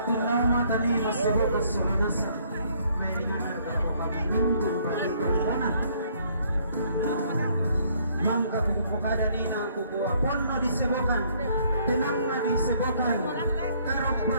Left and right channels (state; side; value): inverted; both; correlation -0.64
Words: nama tani masebut kesolanasa. May ringanar kako kaminggu bagi korbanan. Mangka bukukada nina kukuha ponno disebokan. Tenang na disebokan. Karok pa